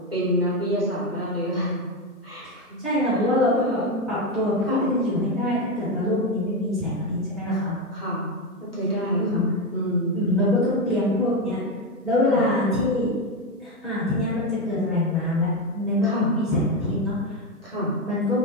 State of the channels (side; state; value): both; normal; correlation 0.11